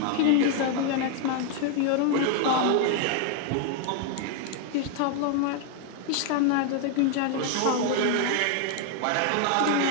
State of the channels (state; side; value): different; both; correlation 0.00